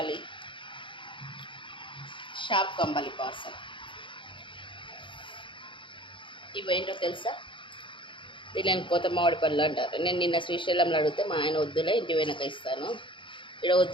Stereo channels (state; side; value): late; right; 0.24 ms